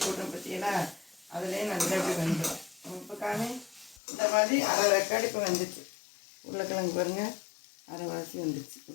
போட்டோம் பார்த்தீங்கன்னா அதுலேயே நல்லா இப்படி வந்துடும். இப்போ காமி இந்த மாதிரி அரை ரெக்கார்டு இப்போ வந்துச்சு. உருளைக்கிழங்கு பாருங்கள் அரைவாசி வந்துச்சு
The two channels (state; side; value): drops out; right; at 4.0 s